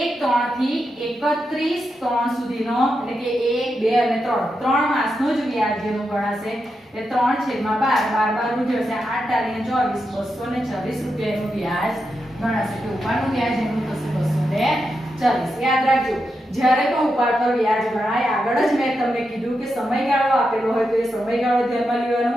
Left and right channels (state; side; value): normal; both; correlation 0.86